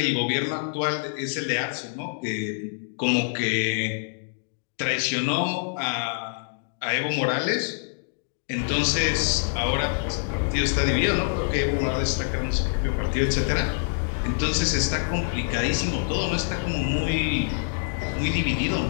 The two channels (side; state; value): right; silent; digital silence